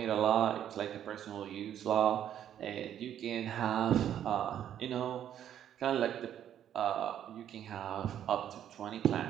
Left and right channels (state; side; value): quieter; left; 10.3 dB